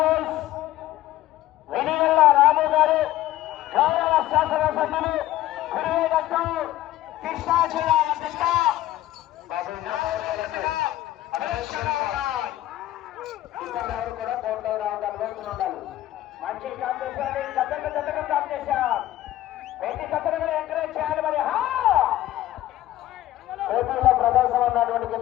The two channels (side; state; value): right; quieter; 14.5 dB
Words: వెనిగల్ల రాము గారు గౌరవ శాసనసభ్యులు కురివేదట్టు కృష్ణా జిల్లా అధ్యక్ష కూడా కోర్టు రావడానికి ఉండాలి. మంచి కాంపిటీషన్, జతకు కాంపిటీషన్, ప్రతి జతను కూడా ఎంకరేజ్ చేయాలి. మరి పోటీలో ప్రదర్శన ఉన్నటువంటి